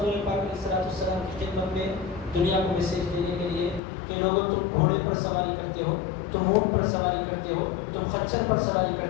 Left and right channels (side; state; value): right; drops out; at 3.8 s